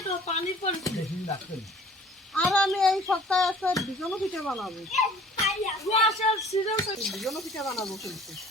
আর আমি এই সপ্তাহে একটা বিজনও পিঠা বানাবো বিজনও পিঠা বানাবো কিন্তু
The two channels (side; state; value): both; normal; correlation 0.51